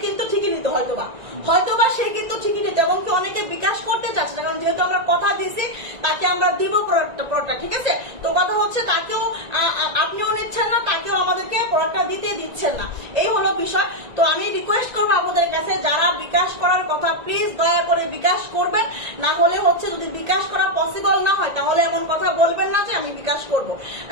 কিন্তু ঠিকই নিত, হয়তোবা সে কিন্তু ঠিকই নিত, এবং কি অনেকে বিকাশ করতে চাচ্ছে, কারণ যেহেতু আমরা কথা দিয়েছি তাকে আমরা দিব প্রোডাক্টটা, ঠিক আছে? তো কথা হচ্ছে তাকেও আপনিও নিচ্ছেন না, তাকেও আমাদেরকে প্রোডাক্টটা দিতে দিচ্ছেন না, এই হলো বিষয়। তো আমি রিকোয়েস্ট করবো আপনাদের কাছে, যারা বিকাশ করার কথা প্লিজ দয়া করে বিকাশ করবেন। না হলে হচ্ছে যদি বিকাশ করা পসিবল না হয় তাহলে এমন কথা বলবেন না যে আমি বিকাশ করব,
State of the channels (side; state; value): left; late; 1.9 ms